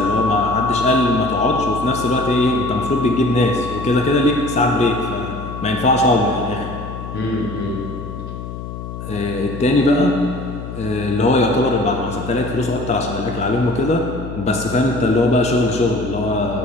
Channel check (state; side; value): noise; left; hum, 9 dB below the sound